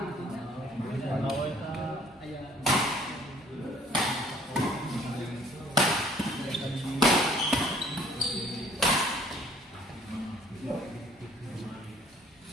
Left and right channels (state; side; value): normal; both; correlation 0.57